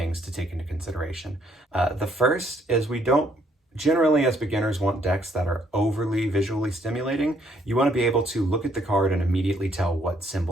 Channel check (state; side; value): normal; both; correlation 0.68